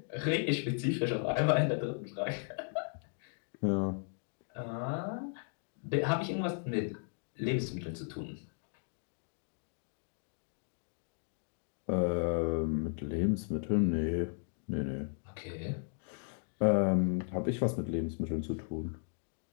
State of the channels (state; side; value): silent; right; 54 dB below the other